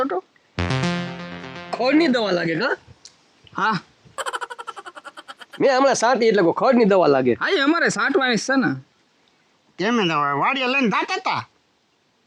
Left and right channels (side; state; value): both; identical; correlation 1.00